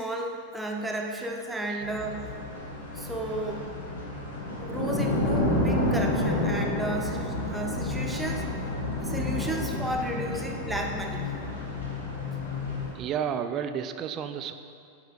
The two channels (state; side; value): normal; both; correlation 0.10